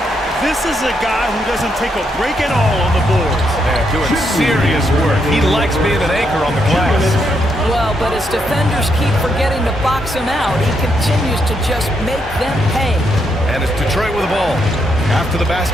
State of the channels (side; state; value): both; normal; correlation 0.78